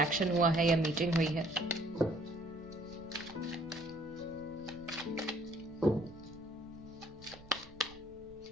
हुआ है या मीटिंग हुई है।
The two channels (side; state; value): right; noise; rumble, 21 dB below the sound